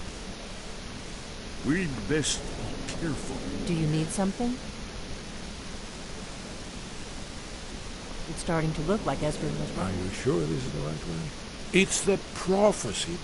We'd best be careful. Do you need something? It's starting to look like Esbern was right. Are you sure this is the right way? It's the prophecy,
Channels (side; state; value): both; identical; correlation 1.00